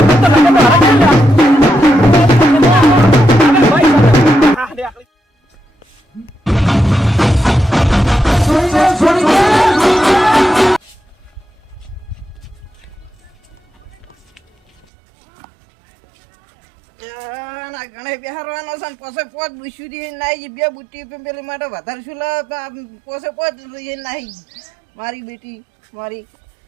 તો લગન મારા કે ભાઈ હા લે આખલી ના ગણે બિહારવાનો છે ને પોસે પોત બુશુરી નાઈ બે બુટ્ટી પેલી માટે વધારે શું પોસે પોત નાઈ મારી બેટી મારી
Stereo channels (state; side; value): drops out; left; at 14.9 s